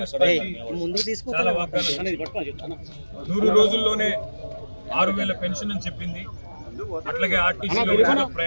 పార్టీ చాలా వాగ్దానాలు 100 రోజుల్లోనే 6,000 పెన్షన్ అని చెప్పింది. అట్లాగే ఆర్టీసీలో ఉచిత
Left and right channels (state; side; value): inverted; both; correlation -1.00